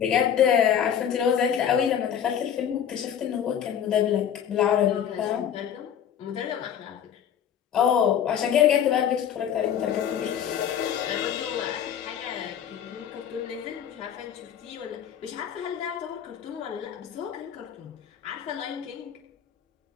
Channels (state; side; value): quieter; right; 9.1 dB